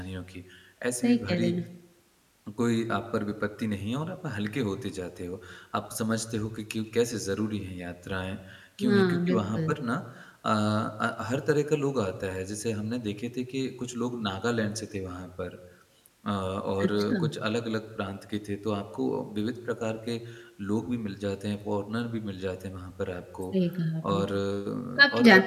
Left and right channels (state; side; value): identical; both; correlation 1.00